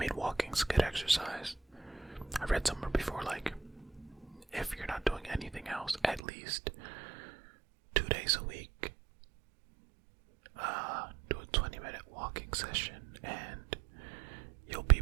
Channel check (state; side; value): drops out; left; at 6.2 s